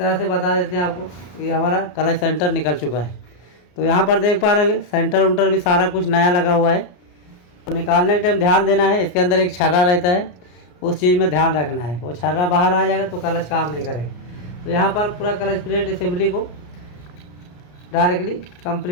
से बता देते हैं आपको, ये हमारा क्लच सेंटर निकल चुका है। तो यहाँ पर देख पा रहे हैं सेंटर उंटर भी सारा कुछ नया लगा हुआ है। तो निकालने के टाइम ध्यान देना है, इसके अंदर एक छर्रा रहता है, उस चीज़ में ध्यान रखना है। वो छर्रा बाहर आ जाएगा तो क्लच काम नहीं करेगा। तो यहाँ पर पूरा क्लच प्लेट असेंबली को डायरेक्टली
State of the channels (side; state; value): right; late; 33 ms